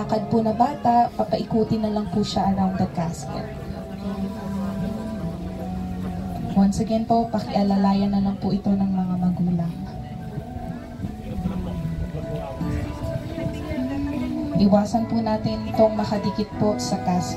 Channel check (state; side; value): identical; both; correlation 1.00